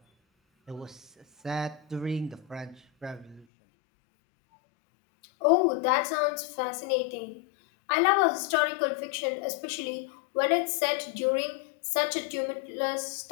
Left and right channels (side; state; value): right; drops out; at 3.5 s